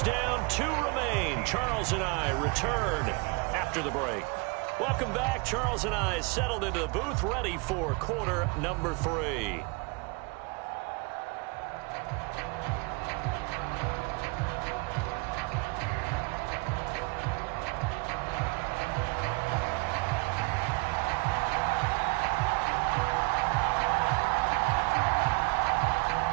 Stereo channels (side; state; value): left; quieter; 29.5 dB